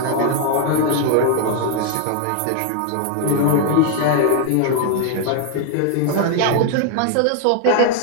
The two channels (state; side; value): different; both; correlation 0.00